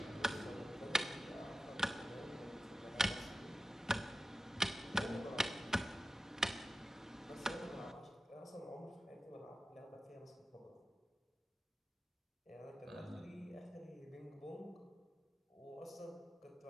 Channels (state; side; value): normal; both; correlation 0.93